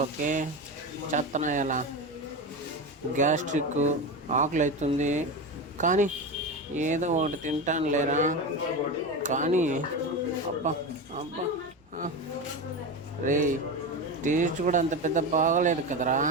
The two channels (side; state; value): both; normal; correlation 0.21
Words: చేత్తనా ఎలా? గ్యాస్ట్రిక్, ఆకలి అవుతుంది. కానీ ఏదో ఒకటి తింటాను లేరా. కానీ అబ్బా అబ్బా, రే టేస్ట్ కూడా అంత పెద్ద బాగలేదు కదరా.